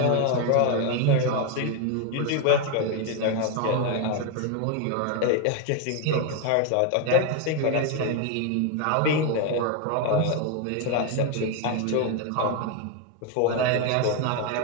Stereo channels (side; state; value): both; different; correlation 0.01